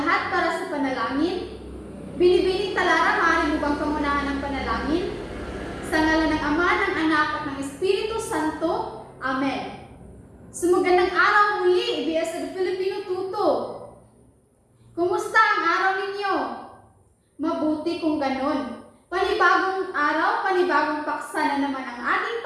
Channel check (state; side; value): identical; both; correlation 1.00